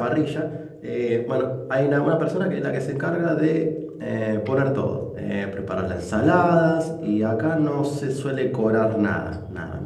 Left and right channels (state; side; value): identical; both; correlation 1.00